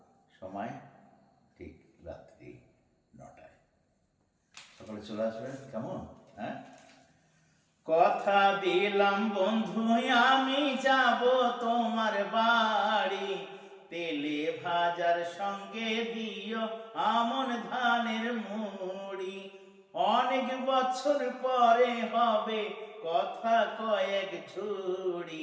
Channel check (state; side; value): identical; both; correlation 1.00